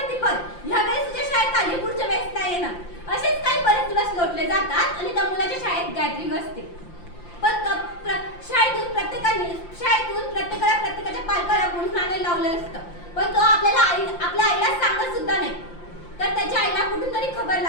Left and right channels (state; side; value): late; right; 5.8 ms